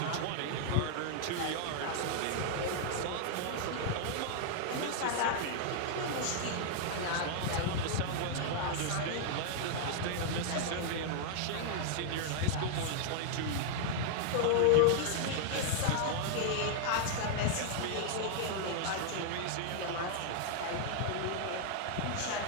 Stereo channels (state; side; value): different; both; correlation -0.01